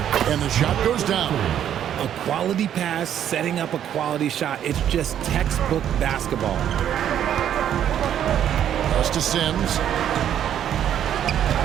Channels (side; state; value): left; quieter; 10.1 dB